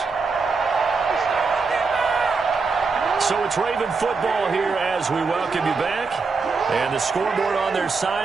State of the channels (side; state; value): left; quieter; 4.6 dB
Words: So it's Raven football here as we welcome you back. And the scoreboard on their